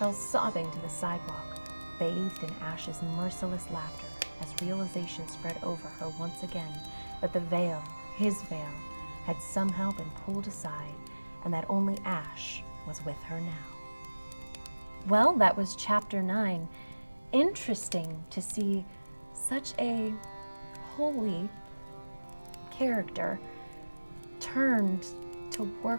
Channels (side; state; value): both; inverted; correlation -1.00